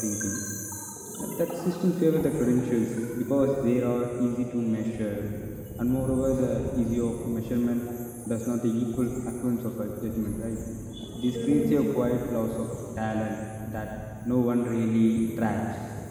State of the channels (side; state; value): both; identical; correlation 1.00